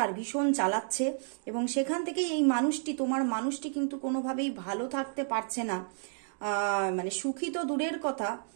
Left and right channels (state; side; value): silent; left; digital silence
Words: ভীষণ চালাচ্ছে। এবং সেখান থেকেই এই তোমার মানুষটি কিন্তু কোনোভাবেই ভালো থাকতে পারছে না, সুখী তো দূরের কথা,